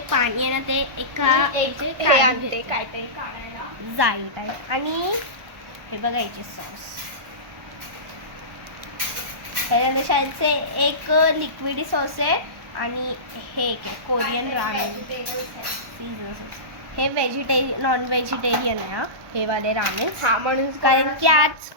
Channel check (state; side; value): late; left; 1.1 ms